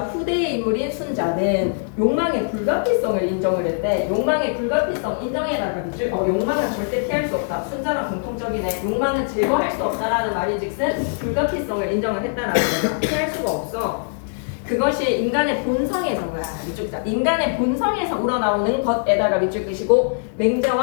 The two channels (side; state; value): right; silent; 63 dB below the other